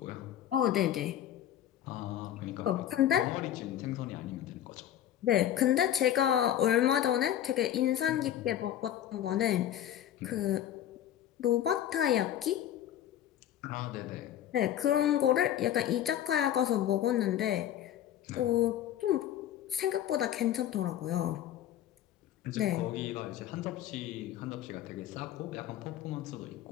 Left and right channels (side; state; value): right; quieter; 11.3 dB